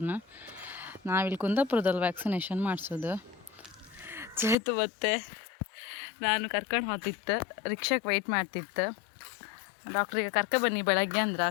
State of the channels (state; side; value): drops out; right; at 4.5 s